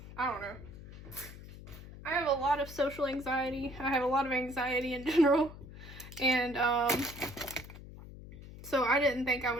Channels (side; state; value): left; noise; hum, 15 dB below the sound